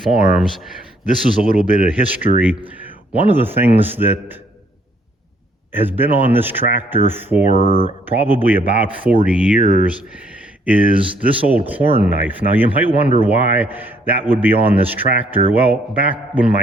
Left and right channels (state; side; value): normal; both; correlation 0.67